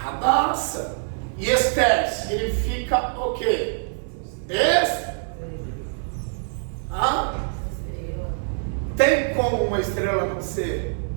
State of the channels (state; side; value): silent; left; 57 dB below the other